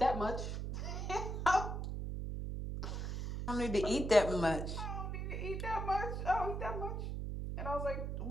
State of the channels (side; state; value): right; noise; hum, 3 dB below the sound